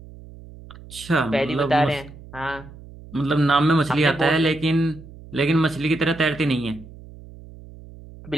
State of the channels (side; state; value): right; noise; hum, 18 dB below the sound